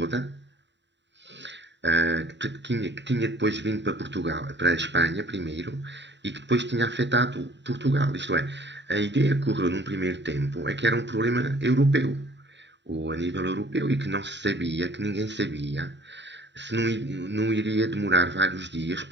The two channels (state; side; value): late; left; 0.52 ms